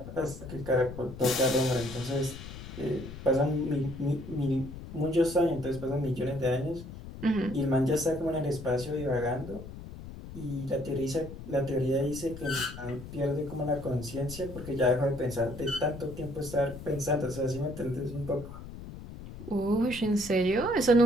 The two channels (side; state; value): left; noise; rumble, 12 dB below the sound